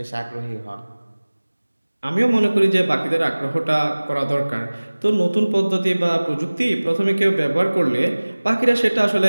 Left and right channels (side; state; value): both; inverted; correlation -1.00